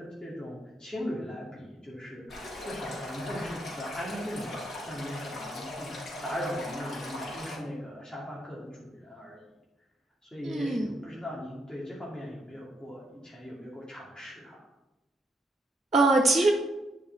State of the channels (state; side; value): normal; both; correlation 0.76